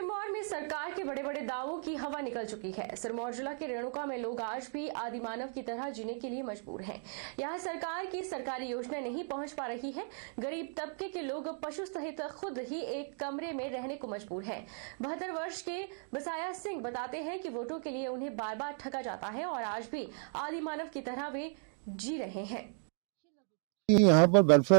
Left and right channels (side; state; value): left; silent; 54 dB below the other